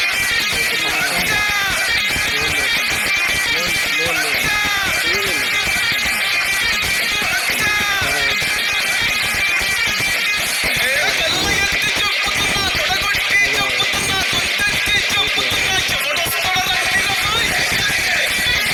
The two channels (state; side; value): identical; both; correlation 1.00